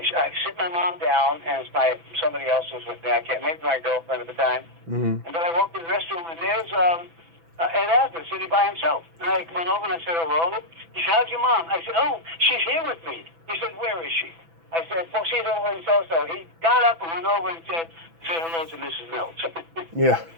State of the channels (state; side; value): late; left; 6.0 ms